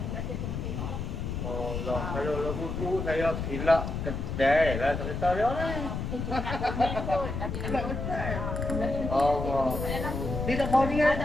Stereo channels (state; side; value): noise; left; rumble, 4 dB below the sound